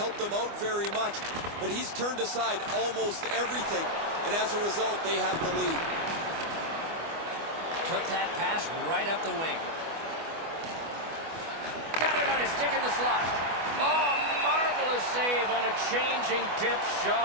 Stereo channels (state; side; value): late; left; 24 ms